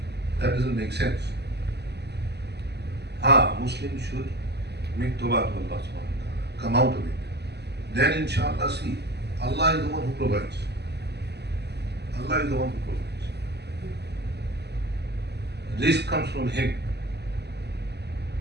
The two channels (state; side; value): late; left; 0.49 ms